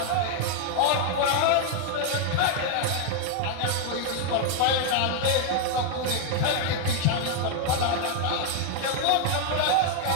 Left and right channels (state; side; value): different; both; correlation 0.00